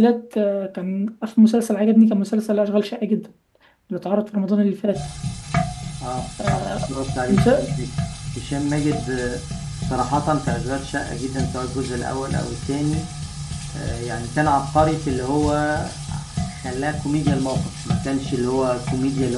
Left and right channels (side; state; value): both; identical; correlation 1.00